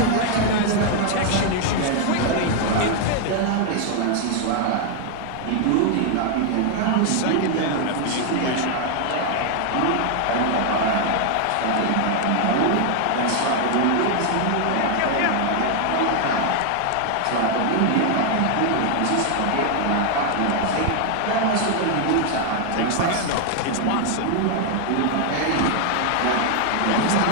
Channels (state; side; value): different; both; correlation 0.00